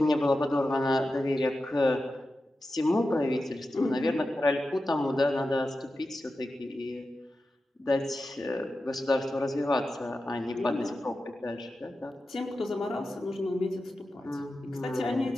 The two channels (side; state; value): both; normal; correlation 0.92